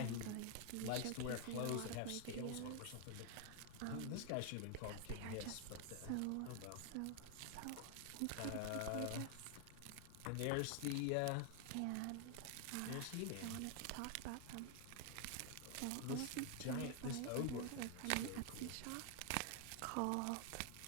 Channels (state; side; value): different; both; correlation 0.00